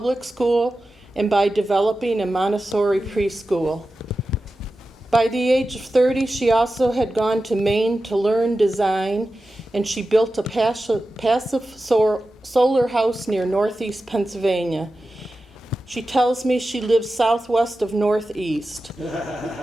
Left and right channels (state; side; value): normal; both; correlation 0.93